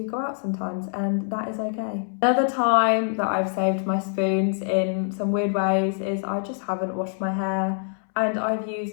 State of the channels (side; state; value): right; silent; 62 dB below the other